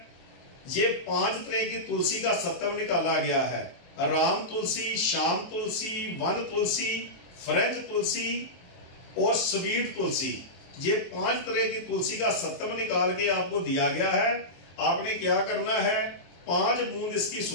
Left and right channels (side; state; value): right; late; 23 ms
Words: ये 5 तरह की तुलसी का सत्व निकाला गया है। राम तुलसी, श्याम तुलसी, वन तुलसी, फ्रेंच तुलसी और स्वीट तुलसी। ये 5 तरह की तुलसी का सत्व निकाल के आपको दिया गया है। आपने क्या करना है, 5 बूंद इसकी